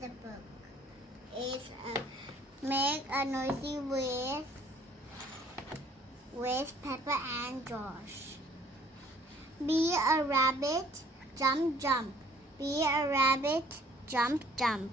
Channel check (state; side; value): normal; both; correlation 0.58